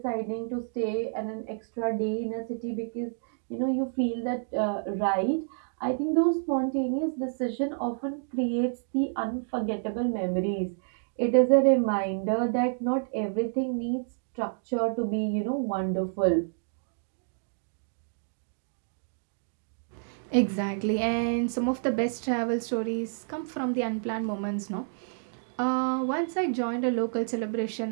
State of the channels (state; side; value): silent; left; digital silence